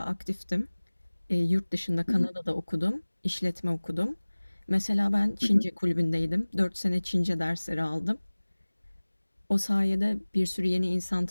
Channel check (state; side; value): inverted; both; correlation -1.00